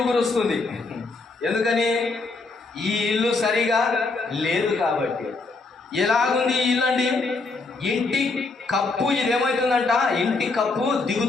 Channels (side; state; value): right; quieter; 3.7 dB